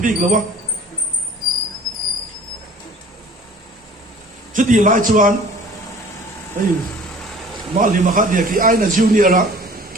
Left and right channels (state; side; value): normal; both; correlation 0.48